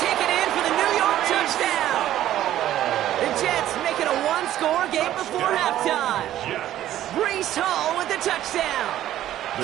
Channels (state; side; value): quieter; left; 12.7 dB